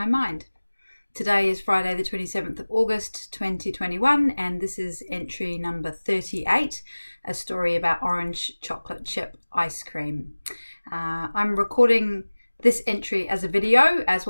mind. Today is Friday the 27th of August 2021, and this is entry number 38, a story about orange chocolate chip ice cream. I'm recording this entry as a video as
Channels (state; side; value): inverted; both; correlation -1.00